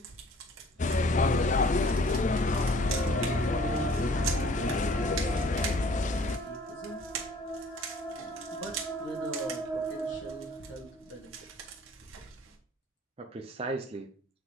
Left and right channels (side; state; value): both; normal; correlation 0.54